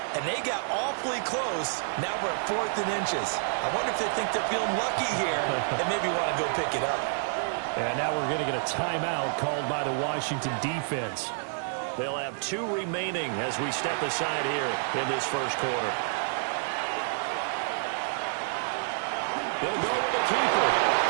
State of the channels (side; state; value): left; silent; 59 dB below the other